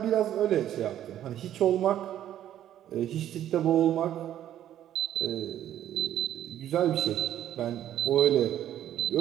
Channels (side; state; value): left; quieter; 11.5 dB